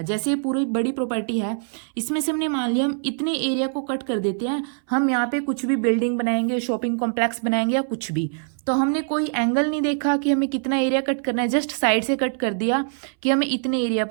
जैसे पूरी बड़ी प्रॉपर्टी है, इसमें से हमने मान लिया हम इतने एरिया को कट कर देते हैं, हम यहाँ पे कुछ भी बिल्डिंग बनाएंगे, शॉपिंग कॉम्प्लेक्स बनाएंगे या कुछ भी, तो हमने कोई एंगल नहीं देखा कि हमें कितना एरिया कट करना है, जस्ट साइड से कट कर दिया कि हमें इतने एरिया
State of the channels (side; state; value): left; silent; 63 dB below the other